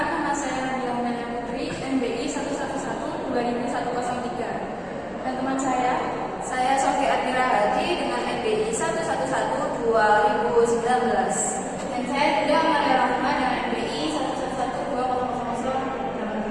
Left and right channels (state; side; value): identical; both; correlation 1.00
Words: nama saya Nadia Umayyah Putri, NBI 111200103. Dan teman saya Sofi Admira Haji dengan NBI 1112019. Dan saya juga Maria Rahma dengan NBI